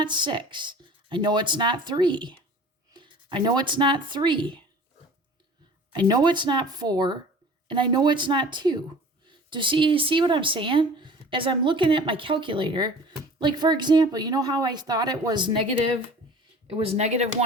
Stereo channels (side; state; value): both; normal; correlation 0.44